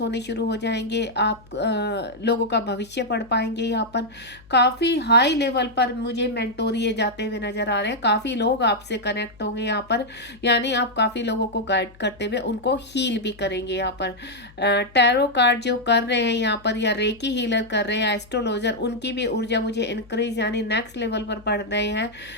होने शुरू हो जाएंगे। आप लोगों का भविष्य पढ़ पाएंगे। यहाँ पर काफ़ी हाई लेवल पर मुझे मेंटोरिए जाते हुए नजर आ रहे हैं। काफ़ी लोग आपसे कनेक्ट होंगे यहाँ पर, यानी आप काफ़ी लोगों को गाइड करते हुए उनको हील भी करेंगे। यहाँ पर टैरो कार्ड जो कर रहे हैं यहाँ पर, या रेकी हीलर कर रहे हैं, एस्ट्रोलॉजर, उनकी भी ऊर्जा मुझे इंक्रीज यानी नेक्स्ट लेवल पर बढ़ रहे हैं।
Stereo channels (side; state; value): left; noise; hum, 25 dB below the sound